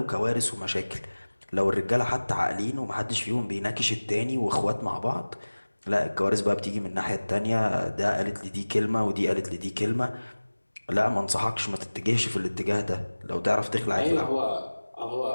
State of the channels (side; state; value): both; inverted; correlation -1.00